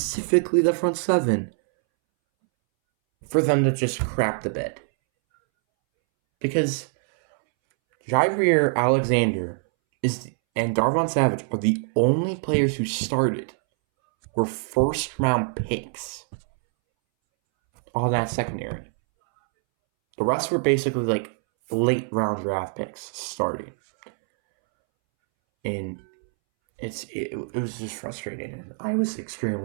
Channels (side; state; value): left; silent; 62 dB below the other